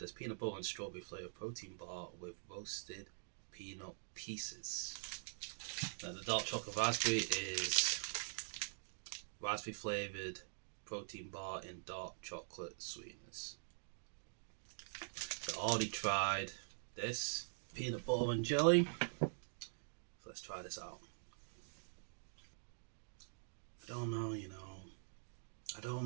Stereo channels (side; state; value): left; silent; digital silence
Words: as peanut butter and strawberry flavoured protein bar with roasted peanut pieces. Now the dark chocolate raspberry is raspberry flavoured protein bar in dark chocolate sweetness. So I already tried this peanut butter and jelly. So let's try this out. I don't know, I don't